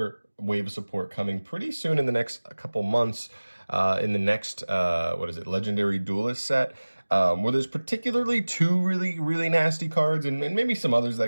wave of support coming pretty soon in the next couple months. In the next Legendary Duelist set. Where there's particularly two really nasty cards and maybe some others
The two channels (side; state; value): both; inverted; correlation -1.00